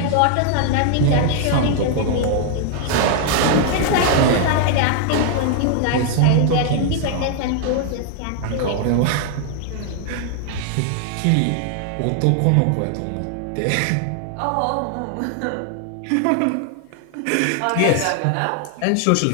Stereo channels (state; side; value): different; both; correlation 0.00